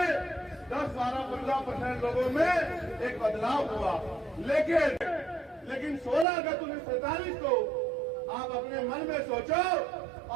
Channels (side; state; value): left; drops out; at 6.2 s